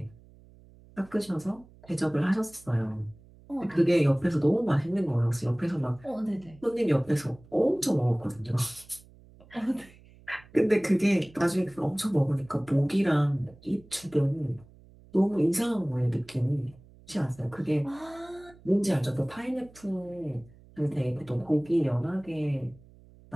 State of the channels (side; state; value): right; noise; hum, 24 dB below the sound